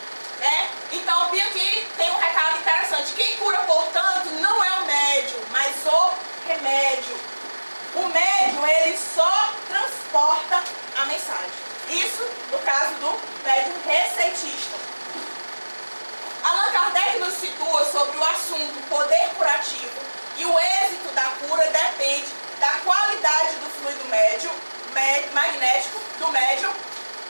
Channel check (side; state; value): both; inverted; correlation -1.00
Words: Né? Então, aqui tem um recado interessante. Quem cura, portanto, não é o médium, mas o remédio. O médium, ele só transporta a mensagem. Isso no caso do médium receitista. Allan Kardec nos situa sobre o assunto poder curativo, e o êxito da cura depende da qualidade do fluido magnético do médium,